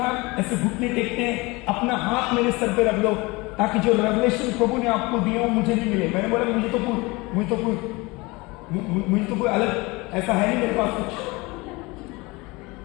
ऐसे घुटने टेकते हैं, अपना हाथ मेरे सर पे रख लो ताकि जो रेवलेशन प्रभु ने आपको दिया हो मुझे नहीं मिले। मैंने बोला मुझे तो कोई अलग ऐसा है नहीं मेरे पास कुछ।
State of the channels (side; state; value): right; quieter; 24.2 dB